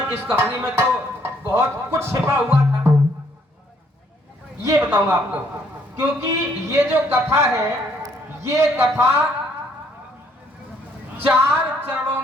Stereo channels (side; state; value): both; normal; correlation 0.67